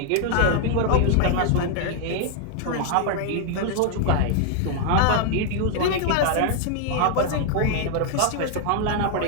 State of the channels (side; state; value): both; different; correlation 0.00